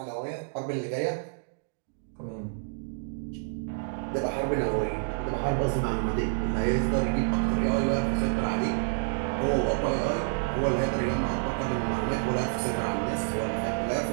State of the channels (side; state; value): left; silent; digital silence